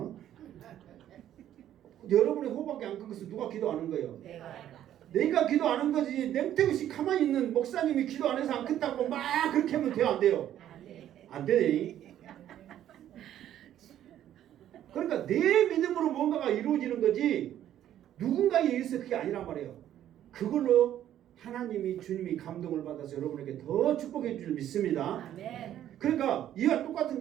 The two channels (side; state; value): left; quieter; 11.5 dB